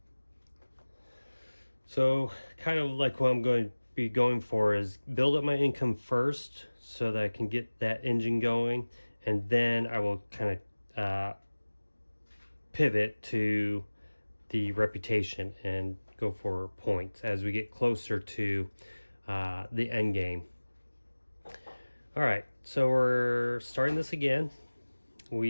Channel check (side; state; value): both; inverted; correlation -1.00